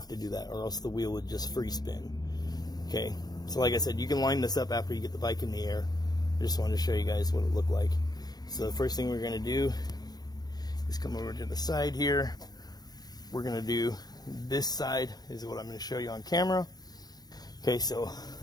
to do that, or else the wheel would just free spin. Okay, so like I said, you can line this up after you get the bike in the air. I just wanted to show you guys what it looked like. So the first thing we're going to do is come over to the side here. We're going to do this side is what I'm going to show you on camera. Okay, so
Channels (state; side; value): late; right; 0.19 ms